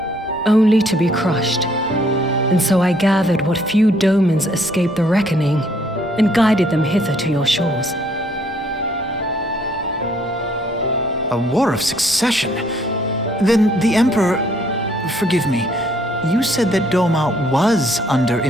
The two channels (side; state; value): both; normal; correlation 0.65